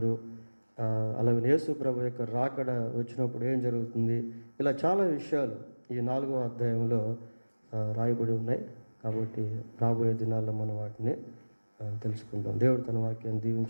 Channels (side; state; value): both; inverted; correlation -1.00